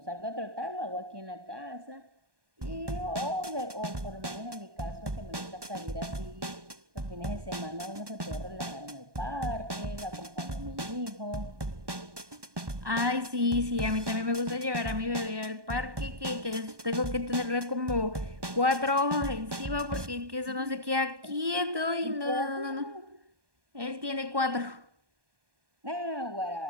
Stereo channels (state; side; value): late; left; 1.2 ms